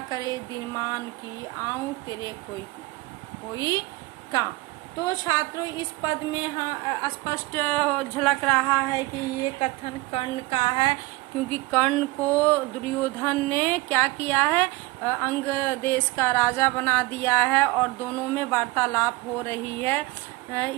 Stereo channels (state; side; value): quieter; left; 22.4 dB